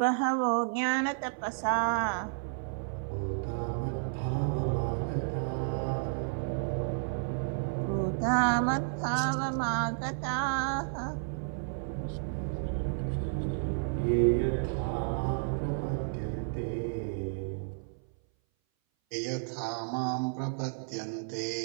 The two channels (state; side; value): silent; left; 57 dB below the other